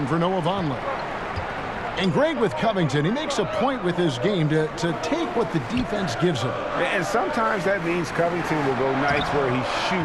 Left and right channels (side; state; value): both; identical; correlation 1.00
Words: for Noah Vonleh. And Greg, with Covington, he makes a point with his game to take what the defense gives him. And sometimes that means Covington will go nights where he